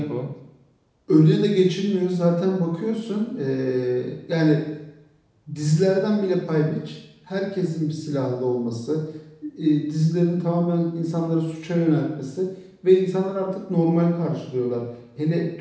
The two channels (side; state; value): both; identical; correlation 1.00